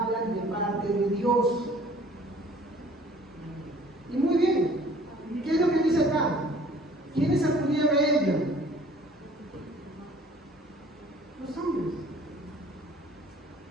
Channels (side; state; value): both; normal; correlation 0.52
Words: de parte de Dios. Y muy bien, ¿qué es lo que dice acá? ¿Quiénes acudían a ella? Los hombres.